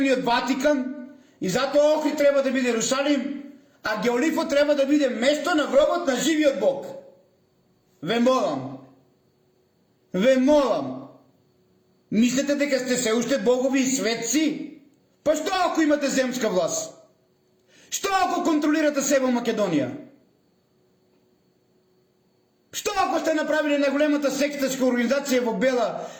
од Ватикан, и затоа Охрид треба да биде Ерусалим, а Геолифот треба да биде место на гробот на живиот Бог. Ве молам. ве молам, мислите дека сте се уште богови и светци? Па што ако имате земска власт? Што ако контролирате себе Македонија? Што ако сте направили најголемата сектачка организација во Бела,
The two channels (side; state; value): both; identical; correlation 1.00